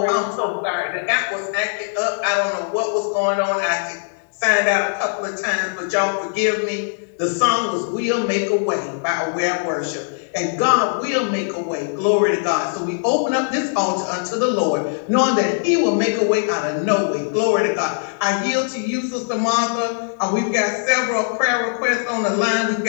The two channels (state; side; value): silent; right; digital silence